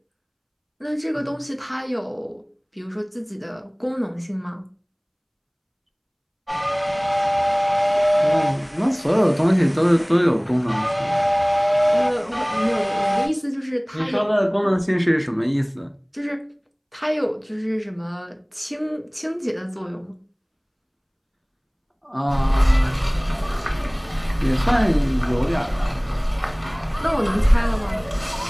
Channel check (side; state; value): both; identical; correlation 1.00